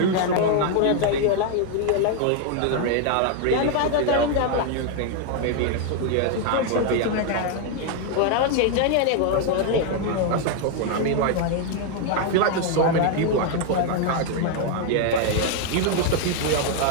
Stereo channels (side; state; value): both; different; correlation 0.00